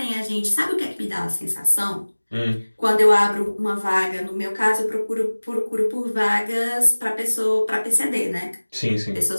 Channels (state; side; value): inverted; both; correlation -1.00